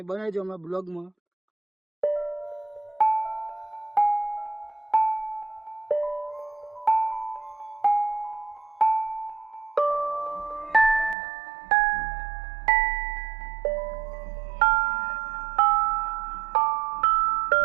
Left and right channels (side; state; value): left; drops out; at 11.2 s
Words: બનાવજો અમારા બ્લોગમાં.